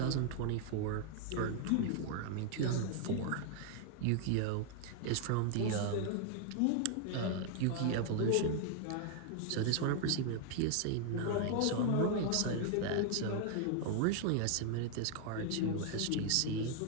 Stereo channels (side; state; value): both; different; correlation 0.00